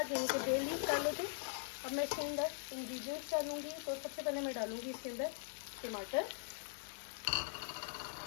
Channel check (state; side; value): silent; right; 50 dB below the other